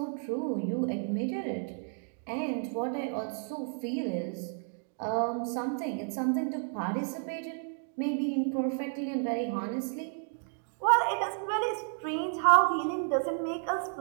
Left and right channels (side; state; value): left; silent; 57 dB below the other